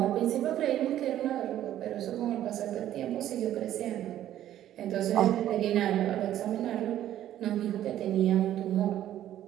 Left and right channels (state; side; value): quieter; left; 12.1 dB